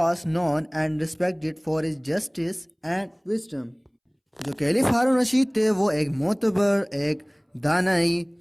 known and respected for his justice and wisdom। जो कैलिफ हारून रशीद थे वो एक मोतबर, एक दानाई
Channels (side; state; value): both; identical; correlation 1.00